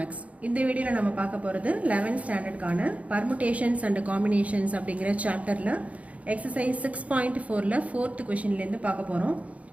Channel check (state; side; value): late; left; 0.066 ms